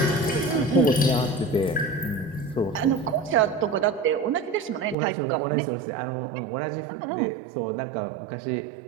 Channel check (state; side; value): drops out; left; at 5.0 s